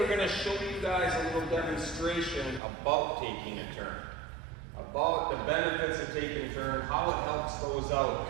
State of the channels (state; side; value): drops out; left; at 2.6 s